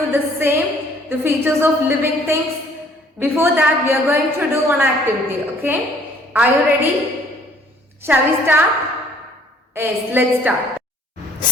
the same, the features of living things. Before that we are going to do one activity, okay? Are you ready? Shall we start? Yes, let's start.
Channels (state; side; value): normal; both; correlation 0.59